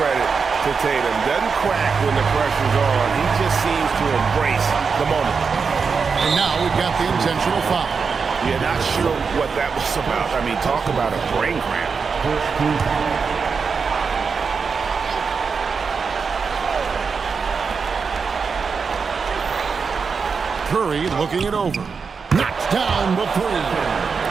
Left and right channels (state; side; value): quieter; left; 5.4 dB